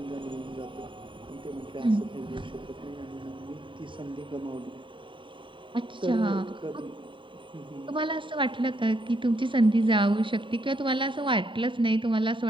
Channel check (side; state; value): left; late; 0.24 ms